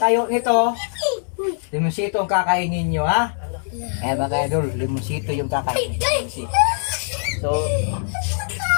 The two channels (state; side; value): silent; right; digital silence